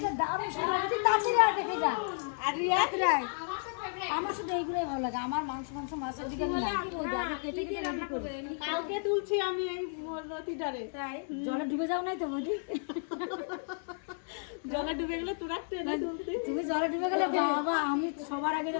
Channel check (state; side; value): silent; right; digital silence